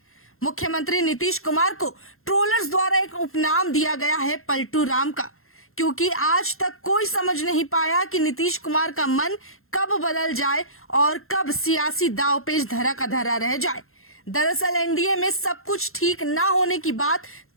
मुख्यमंत्री नीतीश कुमार को ट्रोलर्स द्वारा एक उपनाम दिया गया है पलटू राम का, क्योंकि आज तक कोई समझ नहीं पाया कि नीतीश कुमार का मन कब बदल जाए और कब सियासी दांवपेच धरा का धरा रह जाए। दरअसल एनडीए में सब कुछ ठीक ना होने की बात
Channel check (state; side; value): late; right; 0.62 ms